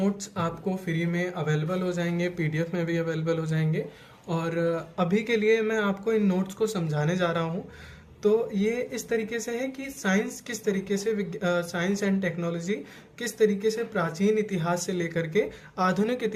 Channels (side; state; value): both; identical; correlation 1.00